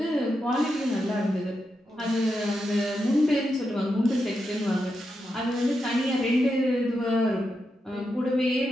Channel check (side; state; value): both; normal; correlation 0.86